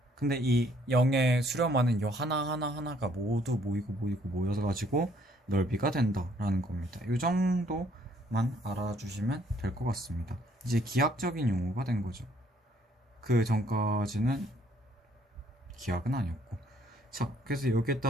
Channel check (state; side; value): normal; both; correlation 0.65